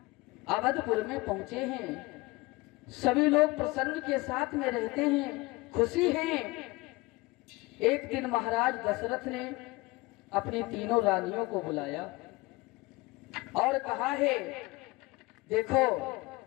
अवधपुर में पहुंचे हैं, सभी लोग प्रसन्न के साथ में रहते हैं, खुशी हैं। एक दिन महाराज दशरथ ने अपनी तीनों रानियों को बुलाया और कहा है, देखो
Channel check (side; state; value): right; quieter; 22.3 dB